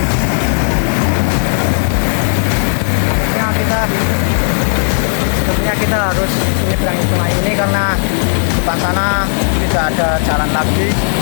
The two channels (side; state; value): right; silent; digital silence